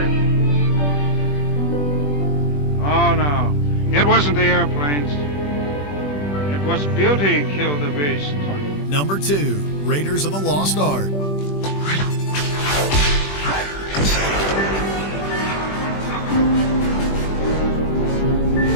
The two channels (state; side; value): late; right; 20 ms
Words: Oh, no. It wasn't the airplanes. It was beauty killed the beast. Number 2, Raiders of the Lost Ark.